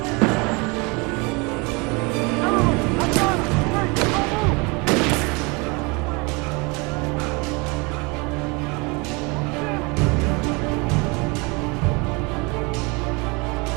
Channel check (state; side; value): quieter; left; 28.4 dB